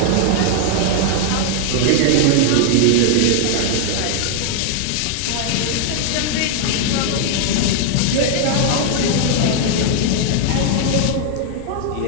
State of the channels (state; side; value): different; both; correlation 0.00